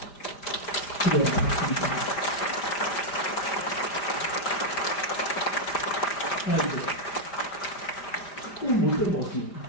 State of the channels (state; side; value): late; right; 5.0 ms